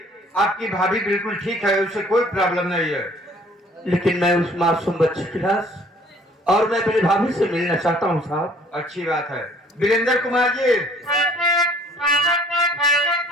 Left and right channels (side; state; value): both; normal; correlation 0.56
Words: आपकी भाभी बिल्कुल ठीक है, उसे कोई प्रॉब्लम नहीं है। लेकिन मैं उस मासूम बच्चे के पास और मैं अपनी भाभी से मिलना चाहता हूँ साहब। अच्छी बात है। वीरेंद्र कुमार जी,